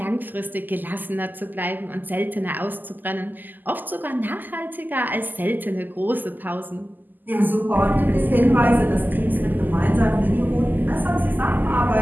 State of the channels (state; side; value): late; left; 0.087 ms